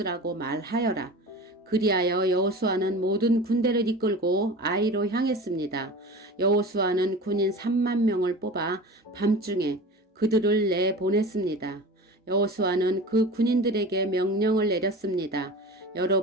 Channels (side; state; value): both; normal; correlation 0.34